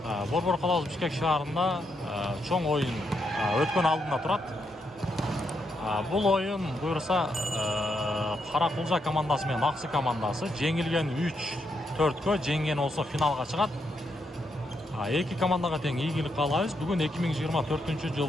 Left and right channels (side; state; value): both; normal; correlation 0.80